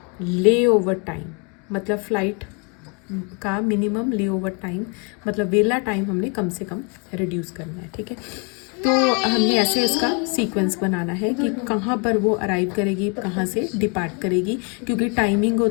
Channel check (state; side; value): quieter; right; 34.2 dB